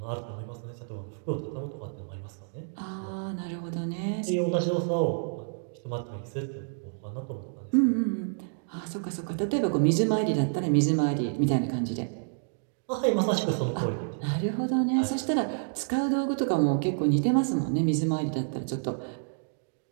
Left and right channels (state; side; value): silent; left; digital silence